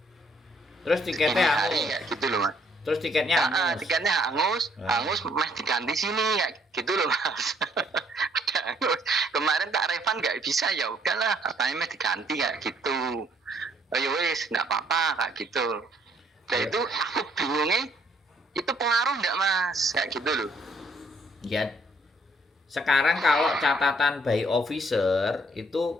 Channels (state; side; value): normal; both; correlation 0.65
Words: Terus segini tiketnya hari hangus. kayak gitu loh Mas. Terus tiketnya hangus. Tiketnya hangus, Ah. meh diganti sini kayak gitu loh Mas. Udah hangus. Kemarin tak refund nggak bisa, ya udahlah katanya meh diganti kayak gitu. Oh ya wes nggak apa-apa kayak gitu. Dan Ya. itu aku bingungnya itu pengaruh nggak Mas kayak gitu loh. Ya. Sekarang kalau catatan by officer